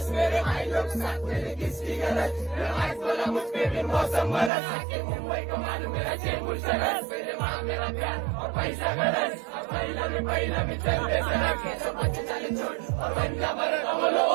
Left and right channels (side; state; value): left; drops out; at 4.5 s